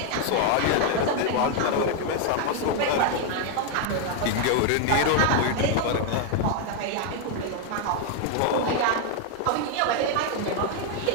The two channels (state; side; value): different; both; correlation 0.01